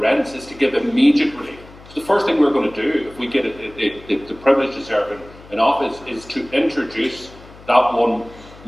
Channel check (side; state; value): left; noise; hum, 21 dB below the sound